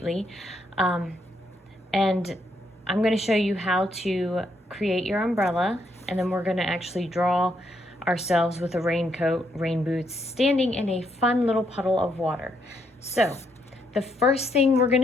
And I'm going to show you how to create your umbrella, and then we're going to actually draw ourselves with a raincoat, rain boots, standing in a fun little puddle of water. So the first thing we're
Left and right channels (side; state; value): both; normal; correlation 0.75